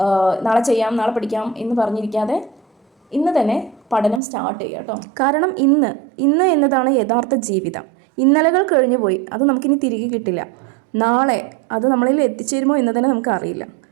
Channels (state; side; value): drops out; left; at 4.2 s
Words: നാളെ ചെയ്യാം, നാളെ പഠിക്കാം എന്ന് പറഞ്ഞിരിക്കാതെ ഇന്ന് തന്നെ പഠനം സ്റ്റാർട്ട് ചെയ്യുക കേട്ടോ. കാരണം ഇന്ന് എന്നതാണ് യഥാർത്ഥ ജീവിതം. ഇന്നലകൾ കഴിഞ്ഞു പോയി, അത് നമുക്കിനി തിരികെ കിട്ടില്ല. നാളെ അത് നമ്മളിൽ എത്തിച്ചേരുമോ എന്ന് തന്നെ നമുക്കറിയില്ല.